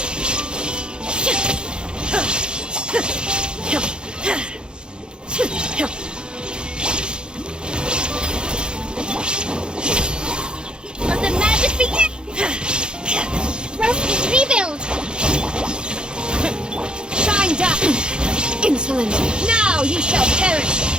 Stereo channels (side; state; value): left; late; 0.049 ms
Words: Let the magic begin! Roasting rebuild! Shine down! Insolent! Now you shall perish!